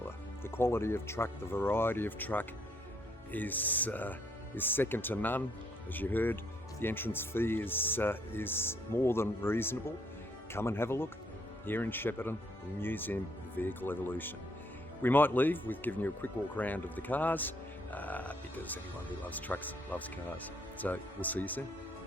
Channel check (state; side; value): normal; both; correlation 0.70